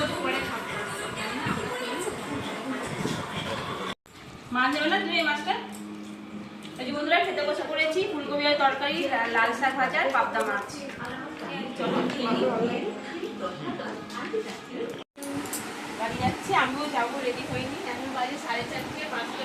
পরে খাবো। মাছ যাবে না তুমি এই মাছটা? এই যে বন্ধুরা খেতে বসে পড়েছি, ফুলকপি আর তরকারি, লাল শাক ভাজা আর পাবদা মাছ। চলো খেয়ে নিই। বাড়ি যাচ্ছি, আমিও যাবো, রেডি হইনি, এখন বাজে 4:30,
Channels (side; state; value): both; identical; correlation 1.00